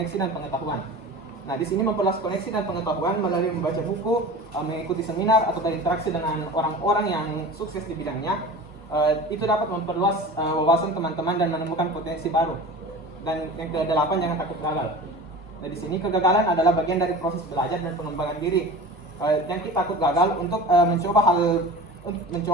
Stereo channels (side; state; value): both; normal; correlation 0.36